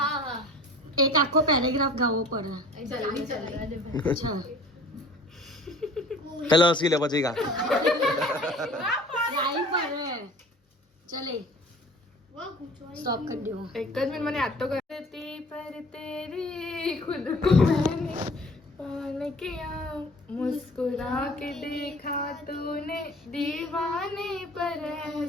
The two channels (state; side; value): normal; both; correlation 0.46